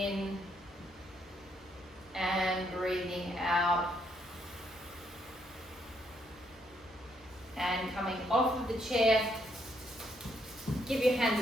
and breathing out. And coming off of the chair, give your hands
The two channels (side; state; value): both; normal; correlation 0.74